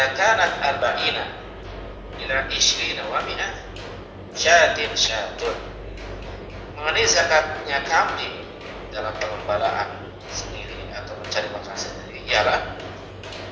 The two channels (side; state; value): both; identical; correlation 1.00